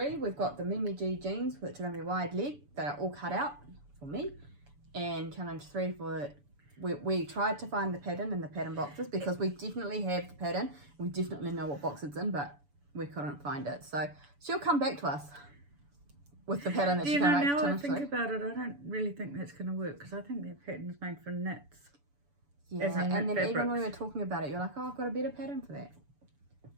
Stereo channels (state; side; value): late; left; 7.0 ms